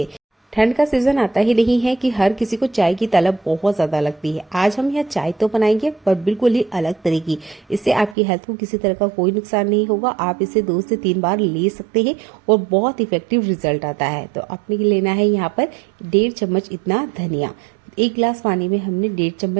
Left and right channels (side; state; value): left; drops out; at 8.2 s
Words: ठंड का सीजन आता ही नहीं है कि हर किसी को चाय की तलब बहुत ज्यादा लगती है। आज हम यहाँ चाय तो बनाएंगे पर बिल्कुल ही अलग तरह की। इससे आपकी हेल्थ को किसी तरह का कोई नुकसान नहीं होगा। आप इसे 2 से 3 बार ले सकते हैं और बहुत इफेक्टिव रिजल्ट आता है। तो आपने लेना है यहाँ पर 1.5 चम्मच इतना धनिया। 1 गिलास पानी में हमने 1.5